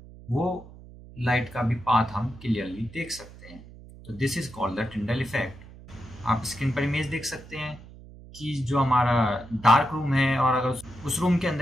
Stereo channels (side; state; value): right; noise; hum, 19 dB below the sound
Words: वो लाइट का भी पाथ हम क्लियरली देख सकते हैं। तो this is called the Tyndall effect. आप स्क्रीन पर इमेज देख सकते हैं कि जो हमारा डार्क रूम है और अगर उस रूम के